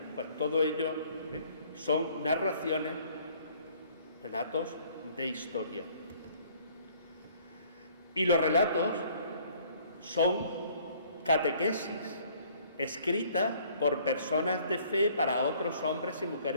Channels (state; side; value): inverted; both; correlation -0.59